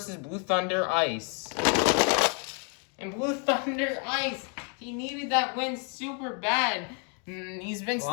Blue Thunder Ice. And Blue Thunder Ice, he needed that win super bad. He's been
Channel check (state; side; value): quieter; right; 38.9 dB